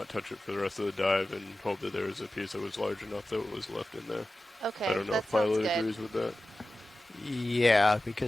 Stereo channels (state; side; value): normal; both; correlation 0.95